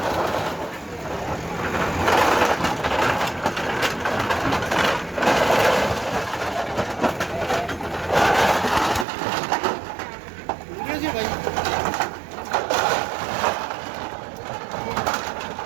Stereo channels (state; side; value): drops out; left; at 9.1 s